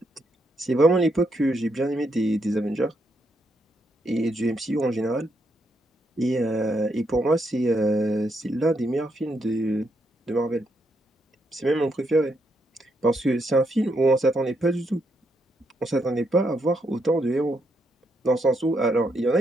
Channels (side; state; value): both; normal; correlation 0.78